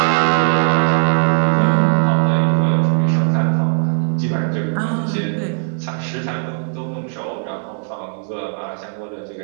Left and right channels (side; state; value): left; silent; digital silence